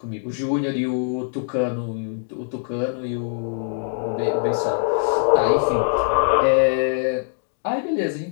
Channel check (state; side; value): silent; right; digital silence